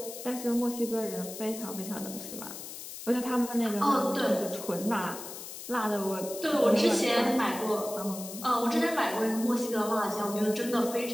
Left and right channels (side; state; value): left; noise; hiss, 11 dB below the sound